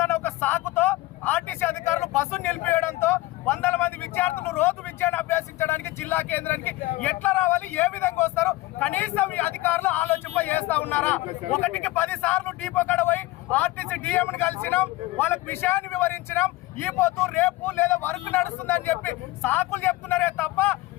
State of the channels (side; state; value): right; quieter; 18.7 dB